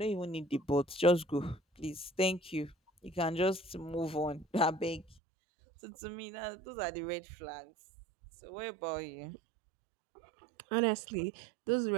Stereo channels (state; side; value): drops out; left; at 5.2 s